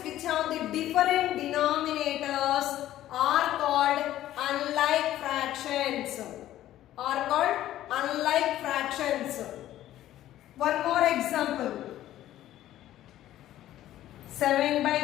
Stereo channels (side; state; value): right; quieter; 13.4 dB